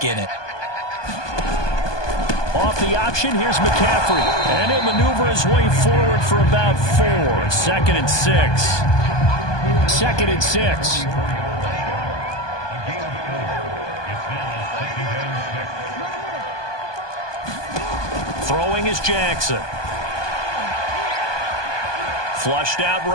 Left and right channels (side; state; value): right; late; 1.2 ms